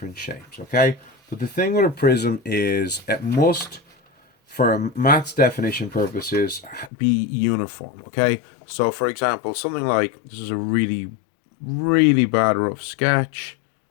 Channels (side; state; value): right; drops out; at 6.9 s